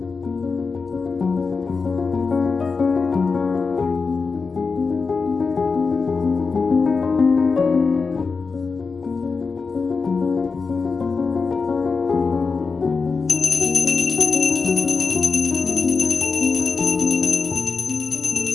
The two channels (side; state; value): right; quieter; 4.7 dB